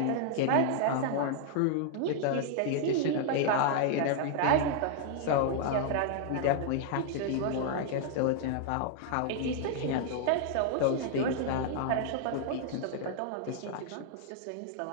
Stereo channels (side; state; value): both; different; correlation -0.01